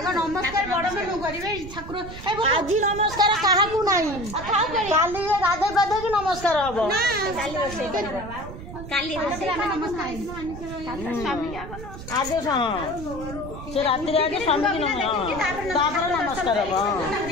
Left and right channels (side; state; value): right; noise; rumble, 11 dB below the sound